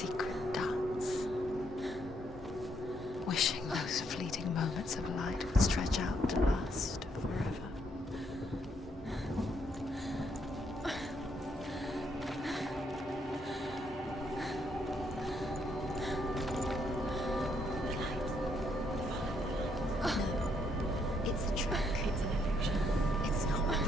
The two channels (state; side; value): normal; both; correlation 0.73